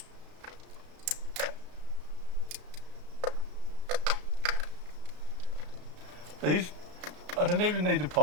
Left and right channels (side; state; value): left; late; 34 ms